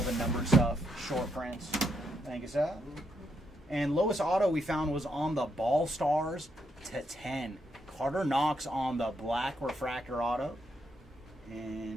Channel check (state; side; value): normal; both; correlation 0.78